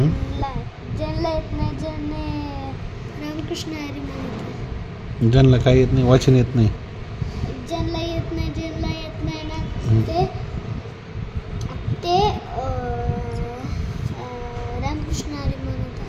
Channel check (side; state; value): both; identical; correlation 1.00